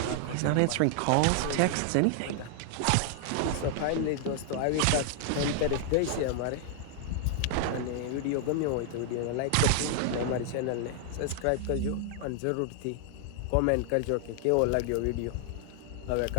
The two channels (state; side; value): different; both; correlation 0.00